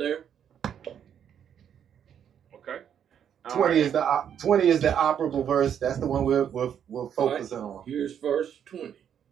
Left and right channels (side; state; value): left; quieter; 8.8 dB